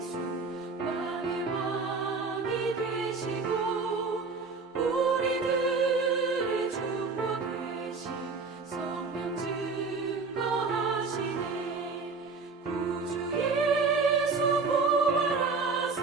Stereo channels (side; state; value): left; quieter; 4.4 dB